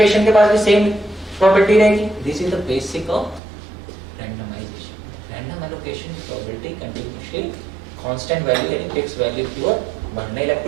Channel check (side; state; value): left; drops out; at 3.4 s